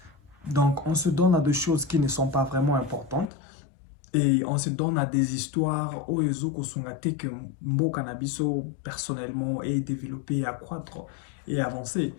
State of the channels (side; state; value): right; drops out; at 3.2 s